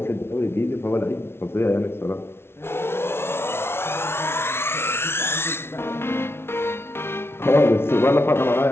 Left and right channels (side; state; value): right; late; 0.12 ms